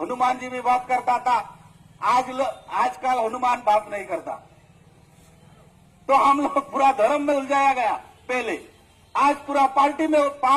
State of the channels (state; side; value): identical; both; correlation 1.00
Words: हनुमान जी भी बात करता था। आजकल हनुमान बात नहीं करता, तो हम लोग पूरा धर्म में उलझाया गया। पहले आज पूरा